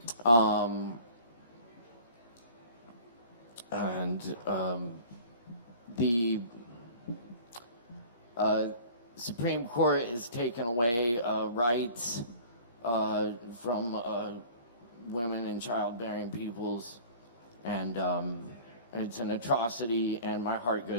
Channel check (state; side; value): inverted; both; correlation -0.46